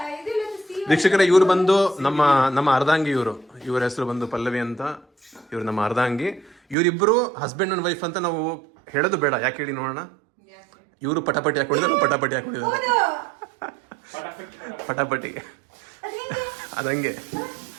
ಇದಿಲ್ಲ, steam. ವೀಕ್ಷಕರೇ, ಇವರು ಬಂದು ನಮ್ಮ ಅರ್ಧಾಂಗಿ. ಇವ್ರ ಹೆಸರು ಬಂದು ಪಲ್ಲವಿ ಅಂತ. ಇವ್ರು ನಮ್ಮ ಅರ್ಧಾಂಗಿ. ಇವರಿಬ್ಬರು ಹಸ್ಬೆಂಡ್ ಅಂಡ್ ವೈಫ್ ಅಂತ ನಾವು ಹೇಳೋದು ಬೇಡ. ಯಾಕೆ ಹೇಳಿ ನೋಡೋಣ. ಇವರು ಪಟಾಪಟಿ ಹಾಕೊಂಡಿದ್ದಾರೆ, ಪಟಾಪಟಿ ಹಾಕೊಂಡಿದ್ದಾರೆ. ಪಟಾಪಟಿ ಅದಂಗೆ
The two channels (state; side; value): drops out; left; at 6.8 s